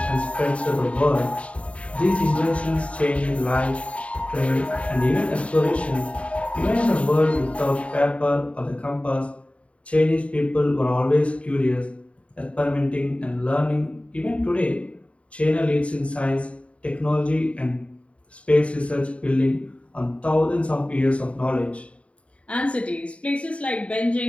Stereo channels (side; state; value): right; late; 0.063 ms